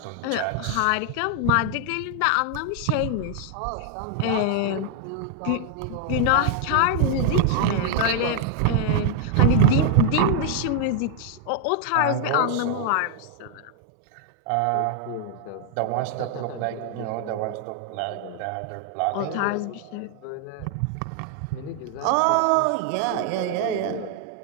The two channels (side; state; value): both; different; correlation 0.00